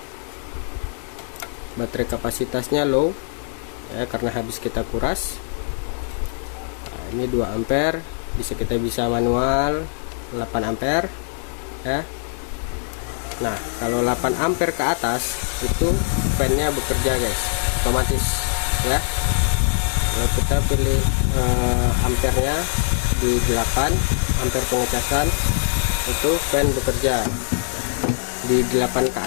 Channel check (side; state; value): right; silent; 64 dB below the other